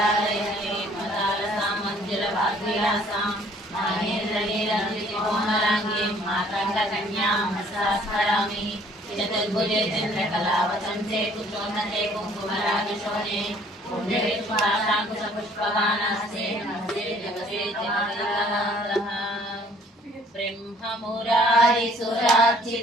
మదాల సామంజల వాద్విలాసాం మాహేంద్రనీలందికోమలాంగీం మాతంగ కన్యాం హస్తాస్మరామి చతుర్భుజే చంద్రకళావతంసే కుచోన్నతే కుంకుమరాగశోనే పుణ్యవిశ్వాసాంకుశపుష్పవానాస్తే నమస్తే జగతే జగదేకనాథః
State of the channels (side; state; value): both; normal; correlation 0.58